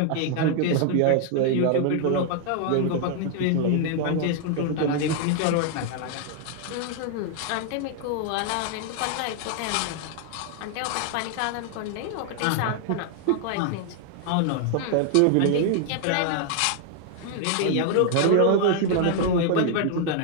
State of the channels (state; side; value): different; both; correlation 0.00